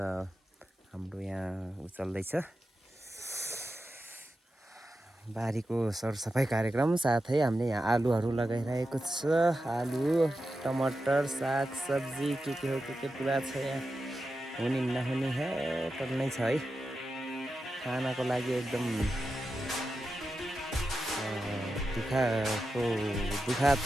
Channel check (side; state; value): both; normal; correlation 0.90